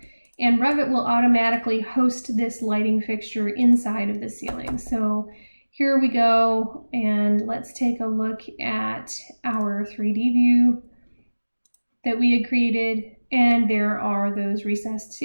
And Revit will automatically host this lighting fixture inside of the ceiling. So here we go, and let's take a look at our 3D view that we had created, and there are those recessed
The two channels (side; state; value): both; inverted; correlation -1.00